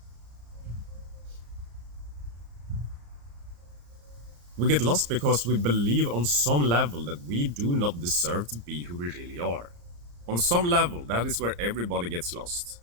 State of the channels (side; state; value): left; late; 34 ms